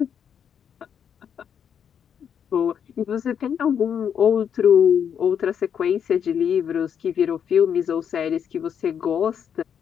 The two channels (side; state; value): right; quieter; 8.1 dB